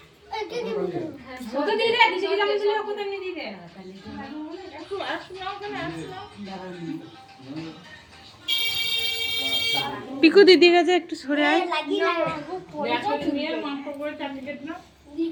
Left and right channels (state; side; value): identical; both; correlation 1.00